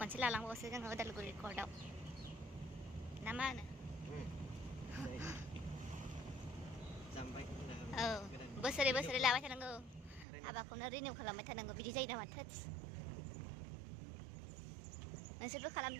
लालांबावसो जोङो उदालगुरि कर्टआव ना मा होनो औ बोसोरै बोसोरै लाबाय थानांगौ हाबाखौनो रिनिउ खालामबाय थानांगौ बिदि जायो नामा थोस नोंसोरबो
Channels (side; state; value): left; drops out; at 10.2 s